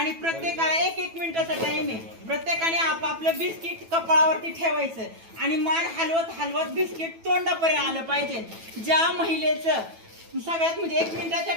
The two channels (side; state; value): left; late; 9.1 ms